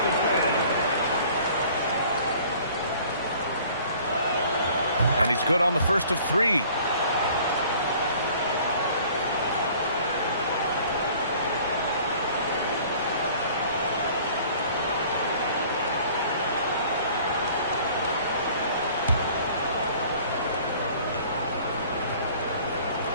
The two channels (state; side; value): inverted; both; correlation -0.52